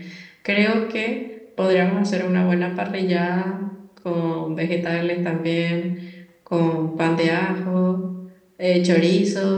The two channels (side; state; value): both; identical; correlation 1.00